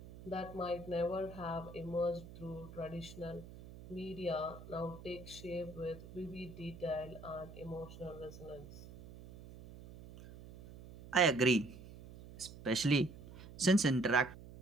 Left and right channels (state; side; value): noise; right; hum, 16 dB below the sound